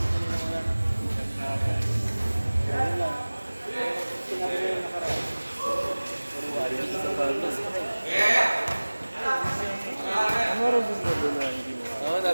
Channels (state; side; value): inverted; both; correlation -1.00